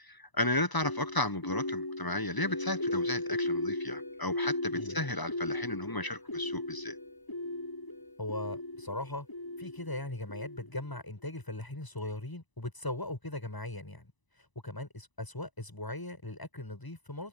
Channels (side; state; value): right; late; 1.0 ms